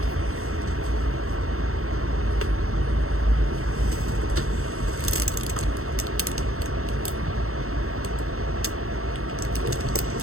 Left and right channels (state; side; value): late; left; 0.63 ms